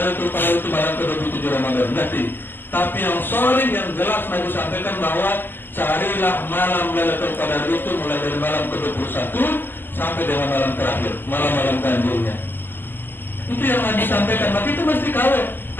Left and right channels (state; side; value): late; right; 0.094 ms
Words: Qadar itu malam ke-27 Ramadan. Nanti. Tapi yang sorry, yang jelas Nabi sampaikan bahwa carilah malam Lailatul Qadar itu mulai dari malam ke-21 sampai dengan malam terakhir, malam-malam ganjilnya. Itu yang Nabi sampaikan. Maka itu mesti kawin.